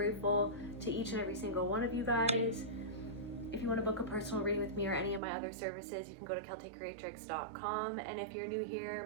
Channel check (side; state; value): left; drops out; at 5.2 s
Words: to each and every single one of you guys. If you want to book a personal reading with me or any of my other services, you can go to KelteCreatrix.com. And if you're new here,